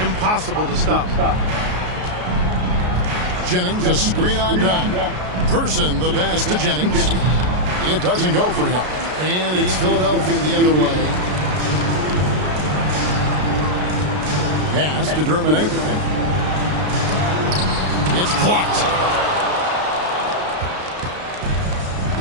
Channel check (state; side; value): late; left; 33 ms